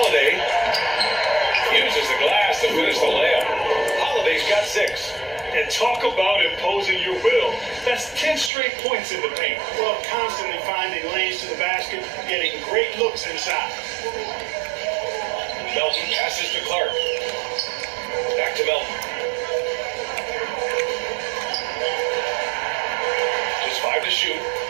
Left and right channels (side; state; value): left; drops out; at 8.5 s